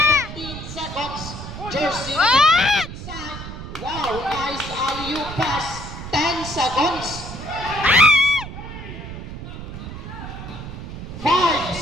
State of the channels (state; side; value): noise; right; rumble, 10 dB below the sound